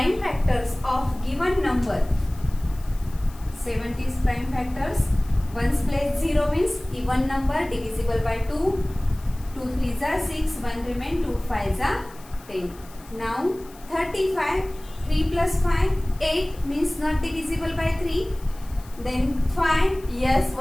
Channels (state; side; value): noise; left; hiss, 23 dB below the sound